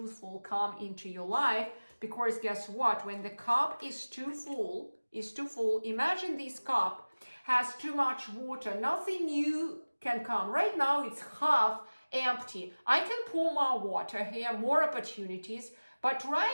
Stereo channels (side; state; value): both; inverted; correlation -1.00